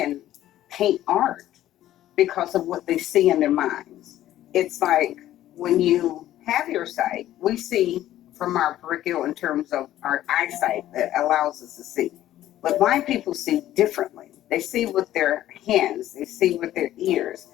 paint art because of what they see in their minds. It's like when you have your sight, we see from our peripheral in terms of our eyesight that allows us to see. But blind people see differently. They see with their hands, they see with their ears.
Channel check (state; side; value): quieter; right; 13.4 dB